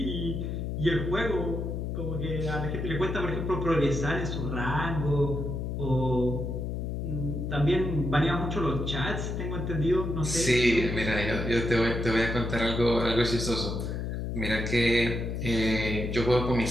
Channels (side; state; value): left; noise; hum, 3 dB below the sound